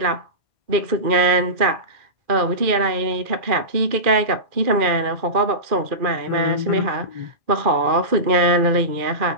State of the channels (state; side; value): late; left; 2.4 ms